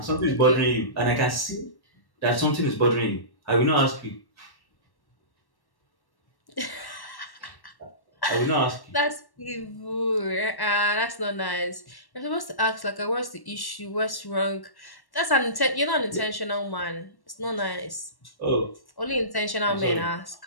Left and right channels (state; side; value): late; right; 1.1 ms